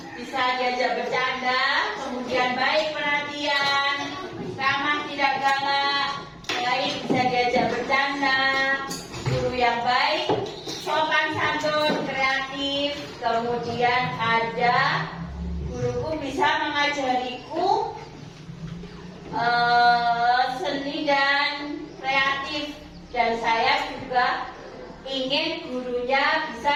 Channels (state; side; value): identical; both; correlation 1.00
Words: bisa diajak bercanda, kemudian baik perhatian, ramah tidak galak, baik bisa diajak bercanda, guru yang baik, sopan santun, kreatif, kemudian ada guruku bisa mengajariku seni dan kreatif, dan saya juga ingin gurunya bisa